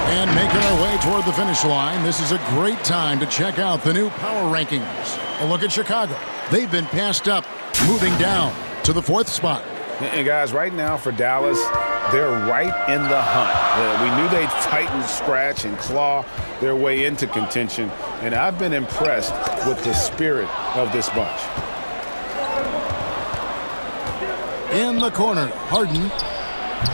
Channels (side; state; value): both; inverted; correlation -1.00